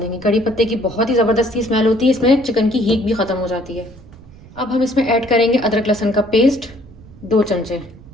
कड़ी पत्ते की बहुत ही ज़बरदस्ती स्मेल होती है, इसमें चिकन की हीट भी ख़त्म हो जाती है। अब हम इसमें ऐड करेंगे अदरक लहसुन का पेस्ट 2 चमचे।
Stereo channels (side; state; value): right; noise; rumble, 21 dB below the sound